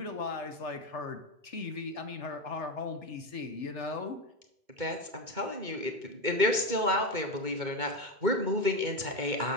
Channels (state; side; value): late; left; 2.2 ms